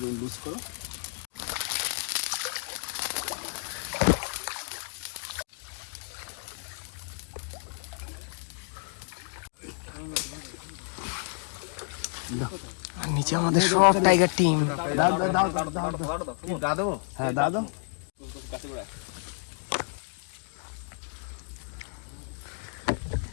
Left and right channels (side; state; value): right; silent; 58 dB below the other